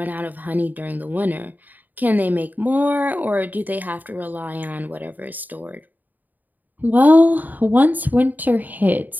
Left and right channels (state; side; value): late; left; 0.085 ms